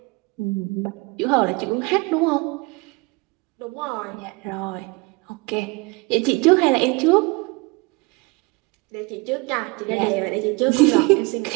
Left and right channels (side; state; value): left; quieter; 26.8 dB